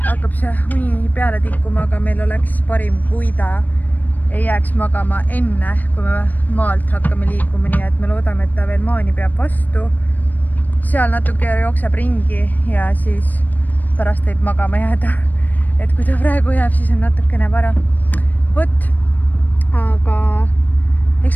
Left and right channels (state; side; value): late; right; 0.083 ms